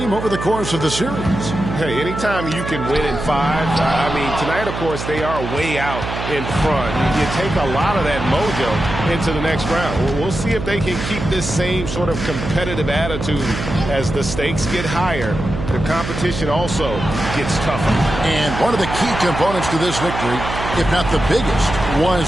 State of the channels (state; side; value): noise; right; hum, 6 dB below the sound